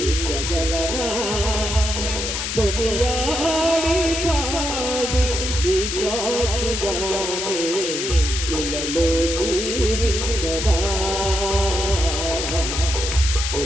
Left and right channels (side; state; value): left; noise; hiss, 3 dB below the sound